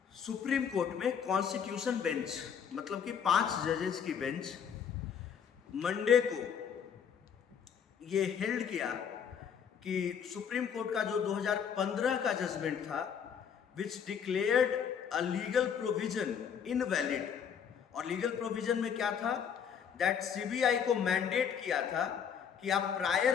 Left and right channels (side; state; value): right; quieter; 7.6 dB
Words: Supreme court में constitution bench मतलब कि 5 जजेस की bench Monday को ये held किया कि supreme court का जो 2015 का जजमेंट था which declared a legal provision invalid, और लीगल प्रोविजन में क्या था, दैट सीबीआई को मैंडेट किया था कि आप